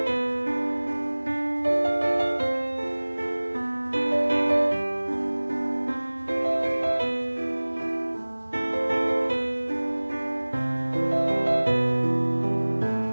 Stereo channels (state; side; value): inverted; both; correlation -1.00